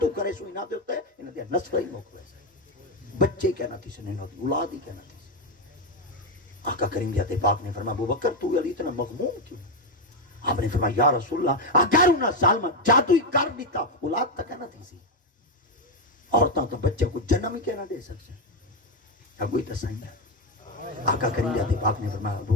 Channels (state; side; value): normal; both; correlation 0.07